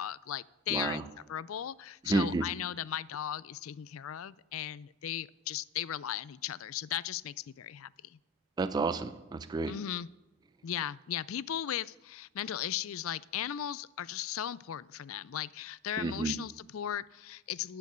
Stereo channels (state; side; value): quieter; right; 3.4 dB